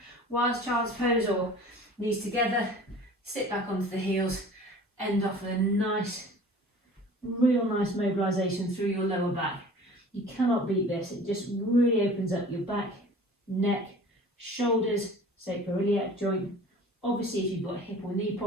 whilst child's pose or knees together, sit back onto the heels, end off with a nice, real nice mobilisation through your lower back. You cannot beat this. It just really opens up your back, neck, shoulders, sacroiliac joint, Obviously, if you've got hip or knee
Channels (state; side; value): normal; both; correlation 0.44